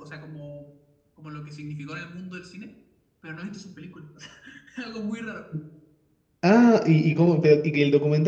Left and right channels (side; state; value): both; identical; correlation 1.00